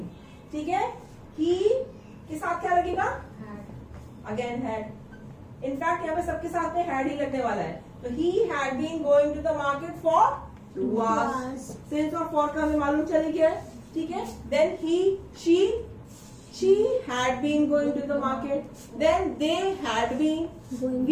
ठीक है. ही के साथ क्या लगेगा. Again had. इनफैक्ट यहाँ पे सबके साथ में हैड ही लगने वाला है. तो he had been going to the market for 2 hours. Since और फॉर का हमें मालूम चल गया. ठीक है. Then he she had been going to the market. Then they had been. Going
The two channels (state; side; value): identical; both; correlation 1.00